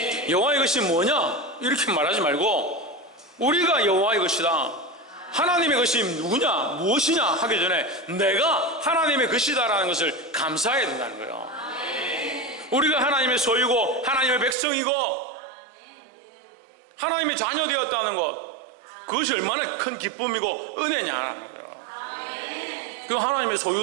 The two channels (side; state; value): left; drops out; at 14.6 s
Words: 여호와의 것이 뭐냐 이렇게 말하지 말고 우리가 여호와의 것이다, 하나님의 것이 누구냐 무엇이냐 하기 전에 내가 하나님의 것이다 라는 것을 감사해야 된다는 거예요. 우리가 하나님의 소유고 하나님의 백성이고 하나님의 자녀 되었다는 것, 그것이 얼마나 큰 기쁨이고 은혜냐라는 거예요. 그 하나님의